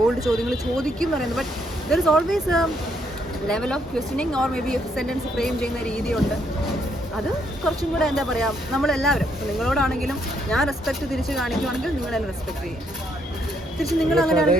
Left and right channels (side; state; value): both; normal; correlation 0.73